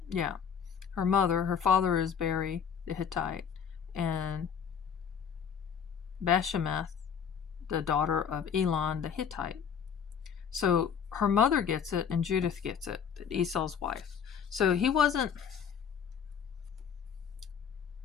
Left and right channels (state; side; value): quieter; right; 7.4 dB